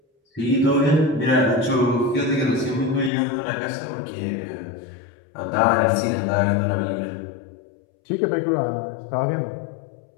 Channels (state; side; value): drops out; right; at 3.1 s